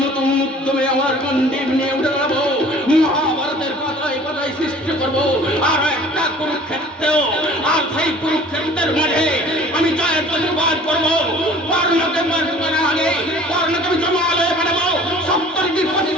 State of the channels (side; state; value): both; normal; correlation 0.48